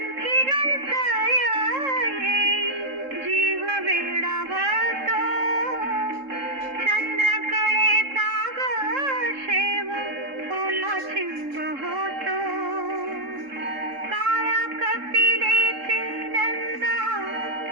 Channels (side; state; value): left; late; 3.7 ms